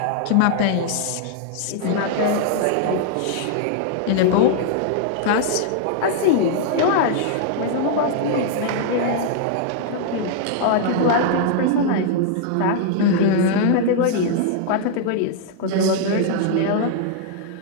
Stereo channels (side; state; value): both; different; correlation -0.01